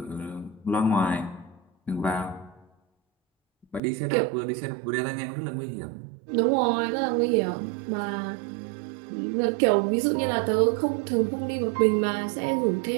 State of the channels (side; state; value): left; drops out; at 3.8 s